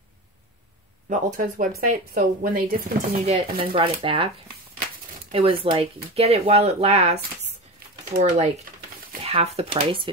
the Ulta's website. So when they discontinued it and then brought it back, it was like, get it while it lasts for like half the price,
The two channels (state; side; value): normal; both; correlation 0.26